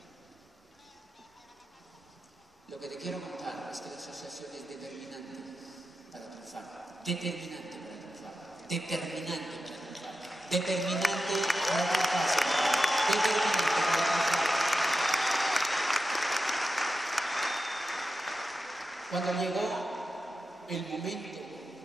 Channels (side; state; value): both; normal; correlation 0.91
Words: Lo que te quiero contar es que la asociación es determinante para triunfar. Determinante para triunfar. Determinante para triunfar. Determinante para triunfar. Determinante para triunfar. Cuando llegó el momento